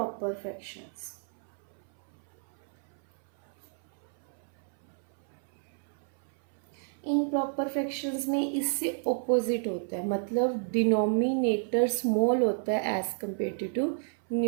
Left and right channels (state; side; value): silent; left; 57 dB below the other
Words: फ्रैक्शंस. इम्प्रॉपर फ्रैक्शंस में इससे ऑपोजिट होता है. मतलब डिनोमिनेटर स्मॉल होता है as compare to